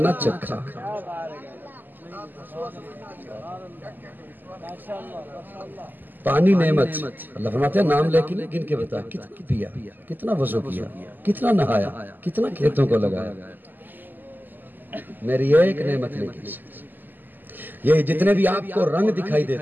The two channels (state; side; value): late; left; 0.088 ms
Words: چکھا۔ پانی نعمت، اللہ فرماتے ہیں نام لے کے نہیں، گن کے بتا کتنا پیا، کتنا وضو کیا، کتنا نہایا، کتنا کھیتوں کو لگایا، میری ایک نعمت نہیں گن سکتی۔ یہ جتنے بھی آپ کو رنگ دکھائی